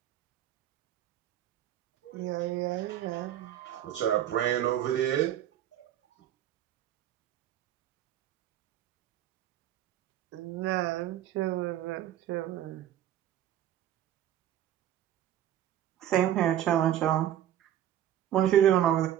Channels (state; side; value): quieter; left; 11.6 dB